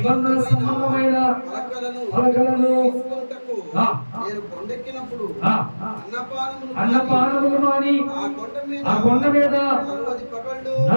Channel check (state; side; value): inverted; both; correlation -1.00